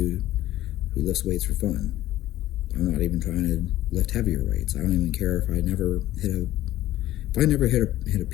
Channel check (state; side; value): quieter; right; 14.5 dB